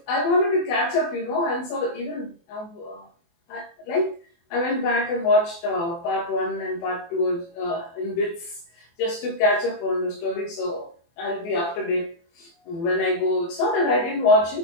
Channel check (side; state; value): right; late; 24 ms